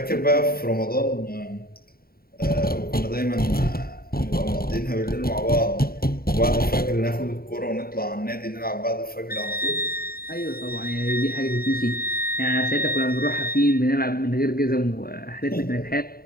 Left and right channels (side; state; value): right; late; 0.44 ms